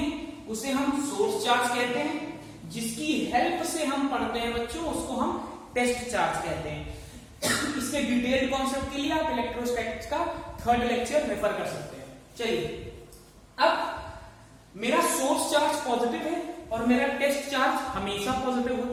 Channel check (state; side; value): identical; both; correlation 1.00